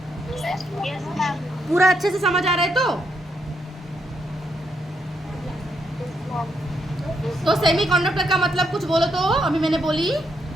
पूरा अच्छे से समझ आ रहा है? तो सेमीकंडक्टर का मतलब कुछ बोलो तो। अभी मैंने बोली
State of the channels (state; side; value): normal; both; correlation 0.78